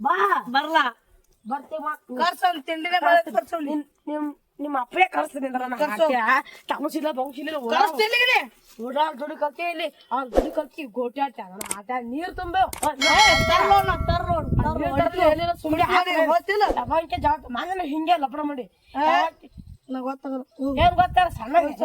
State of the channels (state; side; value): identical; both; correlation 1.00